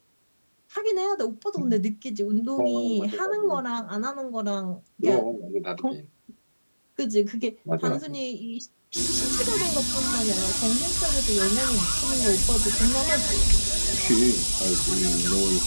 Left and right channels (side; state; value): both; inverted; correlation -1.00